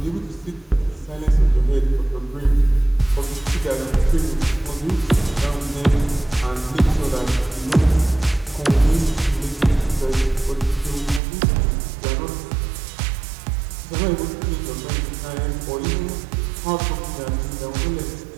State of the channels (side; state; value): left; drops out; at 11.2 s